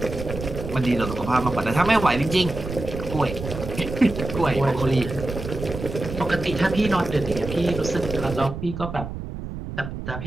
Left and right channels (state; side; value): noise; right; rumble, 8 dB below the sound